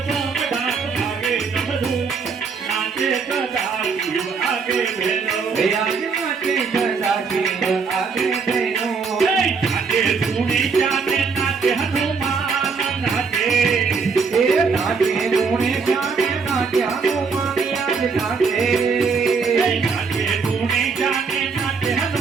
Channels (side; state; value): left; quieter; 5.2 dB